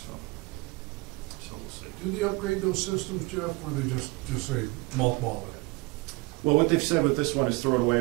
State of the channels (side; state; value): left; quieter; 24.1 dB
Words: So we'll see. Do they upgrade those systems, Jeff, or they just say mothball it? Well, what they've said with this one is throw it